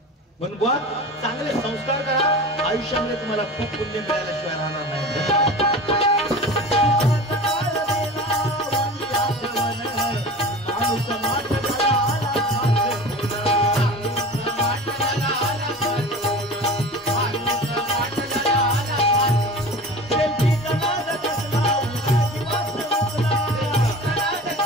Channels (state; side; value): normal; both; correlation 0.35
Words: म्हणून बुवा चांगले संस्कार करा, आयुष्यामध्ये तुम्हाला खूप पुण्य मिळाल्याशिवाय राहणार नाही.